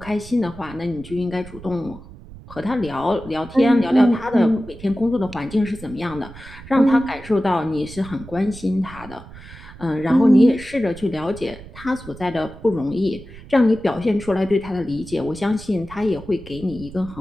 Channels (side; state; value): right; noise; rumble, 17 dB below the sound